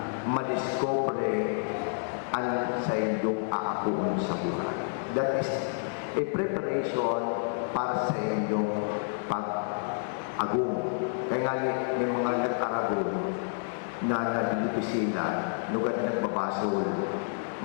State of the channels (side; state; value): right; silent; digital silence